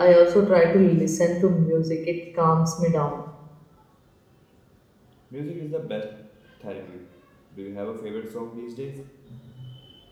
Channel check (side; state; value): both; identical; correlation 1.00